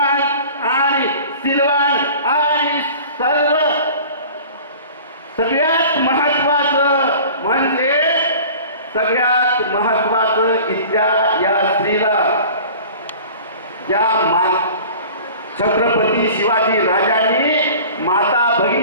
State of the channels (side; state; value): both; inverted; correlation -0.43